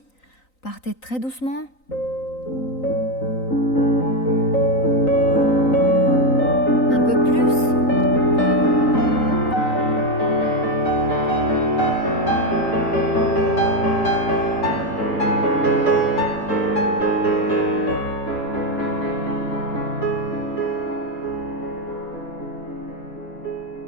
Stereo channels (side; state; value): right; late; 3.9 ms